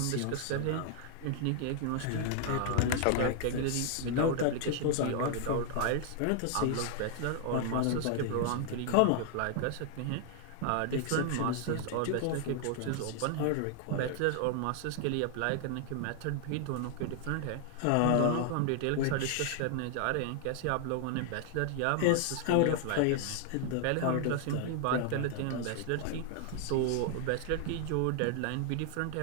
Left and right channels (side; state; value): both; different; correlation 0.00